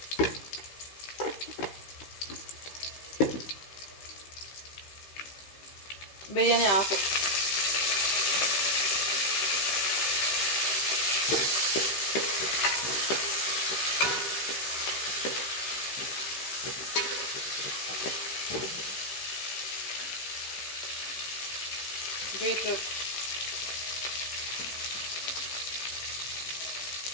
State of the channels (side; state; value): right; late; 15 ms